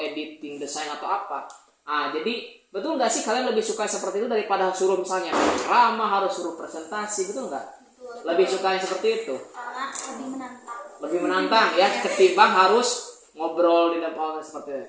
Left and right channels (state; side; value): identical; both; correlation 1.00